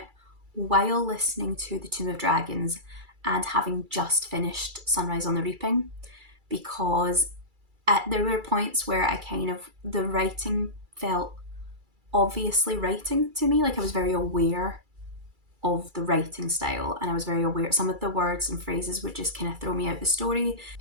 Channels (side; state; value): left; late; 2.3 ms